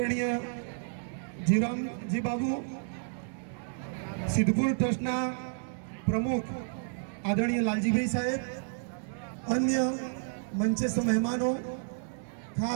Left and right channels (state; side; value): silent; left; digital silence